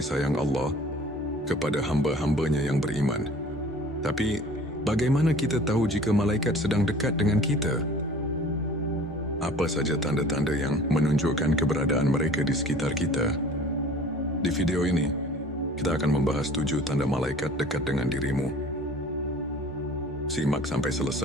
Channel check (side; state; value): both; normal; correlation 0.47